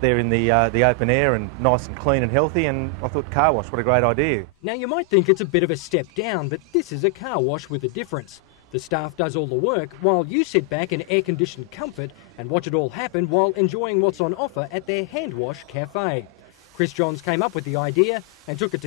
in the open air and nice and clean and healthy, and I thought car wash, what a great idea. Now you might think it's a bit of a step down, but this is a car wash with a difference. The staff does all the work while you sit back in air-conditioned comfort and watch it all happen while enjoying what's on offer at their hand wash cafe. Chris Johns came up with the idea and took it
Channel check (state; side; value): normal; both; correlation 0.00